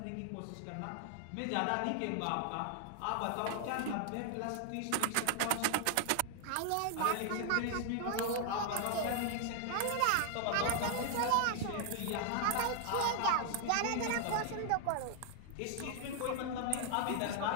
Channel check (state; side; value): different; both; correlation 0.00